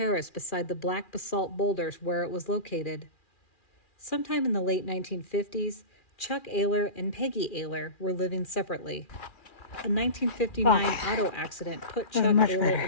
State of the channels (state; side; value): late; right; 2.4 ms